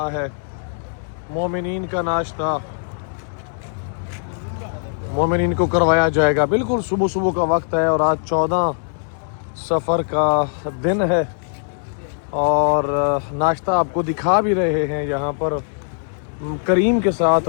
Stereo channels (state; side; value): silent; right; digital silence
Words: ہے، مومنین کا ناشتہ مومنین کو کروایا جائے گا۔ بالکل صبح کا وقت ہے، اور آج 14 سفر کا دن ہے، اور ناشتہ آپ کو دکھا بھی رہے ہیں۔ یہاں پر کریم کے ساتھ